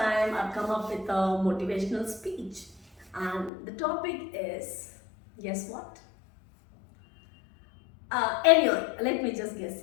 I've come up with a motivational speech and the topic is, guess what? Anyway, let me just guess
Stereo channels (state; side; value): drops out; right; at 3.5 s